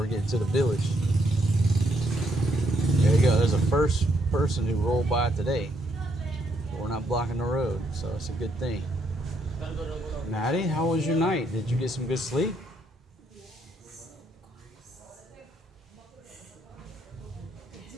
getting to the village. There you go. There's a first person who rolled by today. We're not blocking the road, so it's a good thing. Maddie, how was your night? Did you get some good sleep?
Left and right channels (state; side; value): normal; both; correlation 0.74